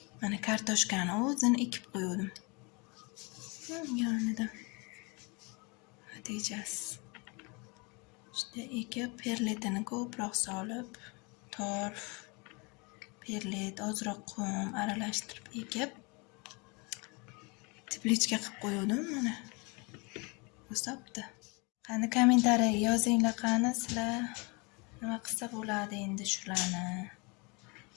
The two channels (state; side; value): quieter; right; 29.4 dB